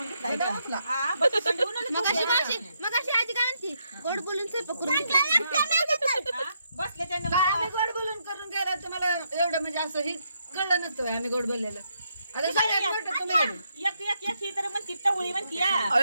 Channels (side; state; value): both; inverted; correlation -0.78